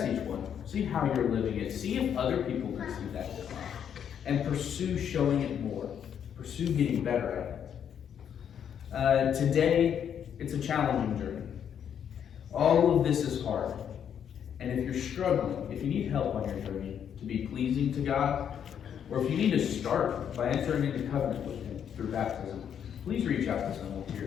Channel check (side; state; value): right; quieter; 8.6 dB